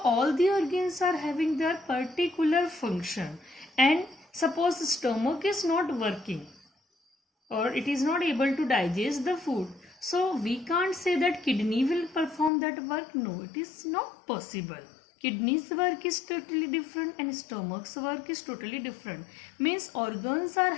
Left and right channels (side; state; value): right; drops out; at 12.5 s